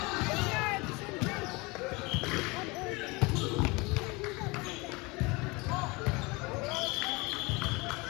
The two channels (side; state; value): right; quieter; 25.8 dB